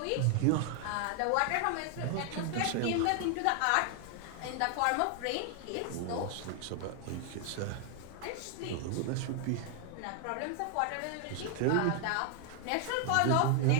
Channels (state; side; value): different; both; correlation 0.00